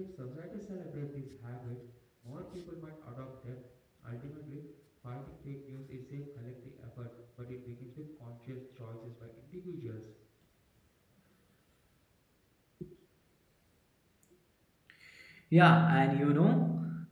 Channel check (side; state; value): both; identical; correlation 1.00